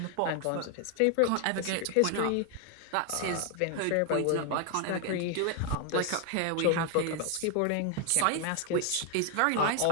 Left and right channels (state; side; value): different; both; correlation 0.01